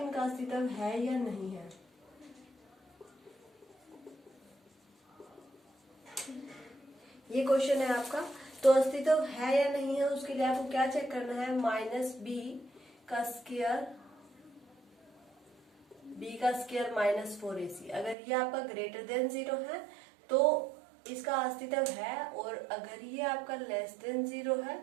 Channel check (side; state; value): left; drops out; at 18.2 s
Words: इनका अस्तित्व है या नहीं है। ये क्वेश्चन है आपका, तो अस्तित्व है या नहीं है उसके लिए आपको क्या चेक करना है? माइनस बी का स्क्वायर माइनस 4ac। अगर ये आपका ग्रेटर देन 0 है तो इसका अस्तित्व है, और अगर ये आपका लेस देन 0 है